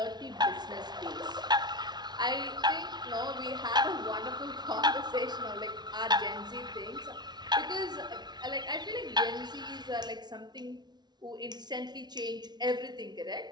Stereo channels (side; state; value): left; late; 0.20 ms